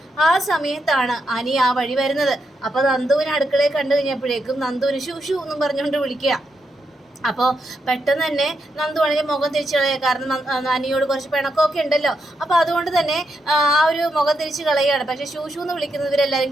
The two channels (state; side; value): normal; both; correlation 0.83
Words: ആ സമയത്താണ് അനി ആ വഴി വരുന്നത്. അപ്പൊ നന്ദുവിനെ അടുക്കളയിൽ കണ്ടു കഴിഞ്ഞപ്പോഴേക്കും നന്ദുവിന് ഷൂ എന്നും പറഞ്ഞുകൊണ്ട് വിളിക്കുക. അപ്പോൾ പെട്ടെന്ന് തന്നെ നന്ദു ആണെങ്കിൽ മുഖം തിരിച്ചു കളയുക. കാരണം അനിയോട് കുറച്ച് പിണക്കമൊക്കെ ഉണ്ടല്ലോ. അപ്പോൾ അതുകൊണ്ട് തന്നെ ആ ഒരു മുഖം തിരിച്ച് കളയുകയാണ്. പക്ഷേ ഷൂ എന്ന് വിളിക്കുന്നവരെല്ലാവരും